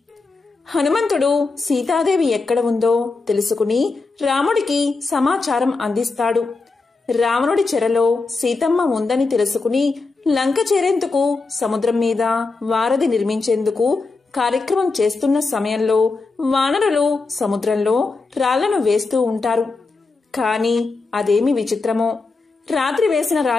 హనుమంతుడు సీతాదేవి ఎక్కడ ఉందో తెలుసుకుని రాముడికి సమాచారం అందిస్తాడు. రావణుడి చెరలో సీతమ్మ ఉందని తెలుసుకుని లంక చేరేందుకు సముద్రం మీద వారధి నిర్మించేందుకు కార్యక్రమం చేస్తున్న సమయంలో వానరులు సముద్రంలో రాళ్లను వేస్తూ ఉంటారు. కాని అదేమి విచిత్రమో, రాత్రి వేసిన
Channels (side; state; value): right; quieter; 3.9 dB